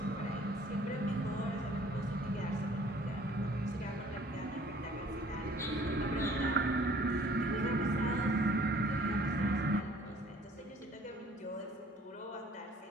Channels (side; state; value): both; normal; correlation 0.55